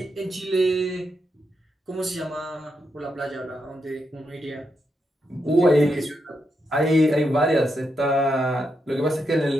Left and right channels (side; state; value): both; normal; correlation 0.83